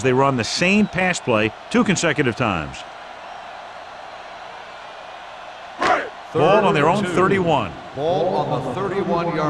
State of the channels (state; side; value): identical; both; correlation 1.00